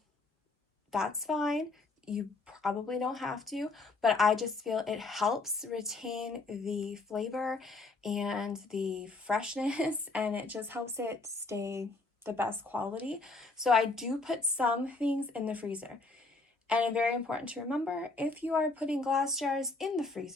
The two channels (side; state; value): right; quieter; 3.5 dB